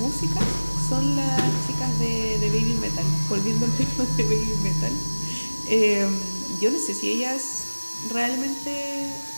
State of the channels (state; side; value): inverted; both; correlation -1.00